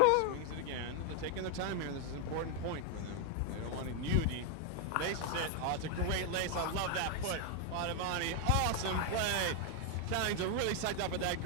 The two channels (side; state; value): both; different; correlation 0.01